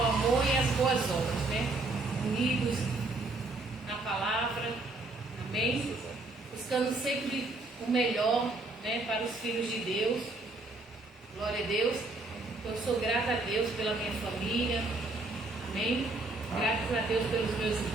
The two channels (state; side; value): quieter; left; 3.0 dB